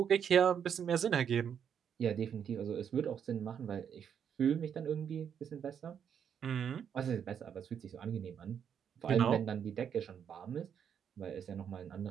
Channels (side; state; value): left; quieter; 8.1 dB